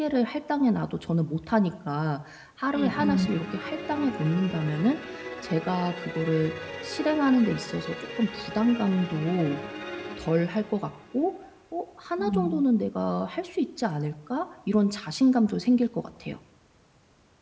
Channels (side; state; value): both; identical; correlation 1.00